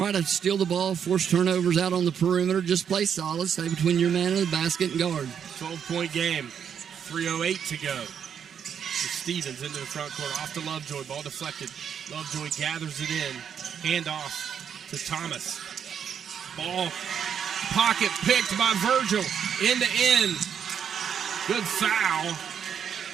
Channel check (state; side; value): quieter; left; 8.0 dB